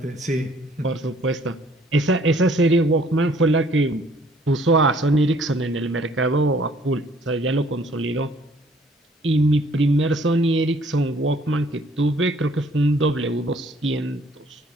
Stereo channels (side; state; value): both; normal; correlation 0.60